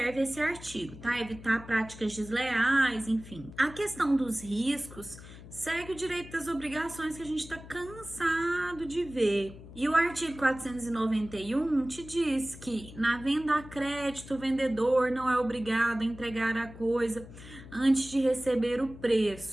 esse artigo, tá? Evitar práticas desleais, enfim. A questão dos riscos segue o direito das obrigações que a gente está cansado de ver. E o artigo 491 te diz que na venda a crédito, o vendedor não é obrigado a entregar a coisa antes de receber o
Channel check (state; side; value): noise; left; hum, 16 dB below the sound